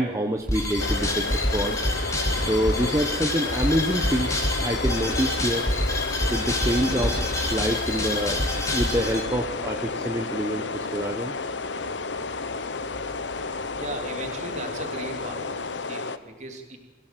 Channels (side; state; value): both; normal; correlation 0.47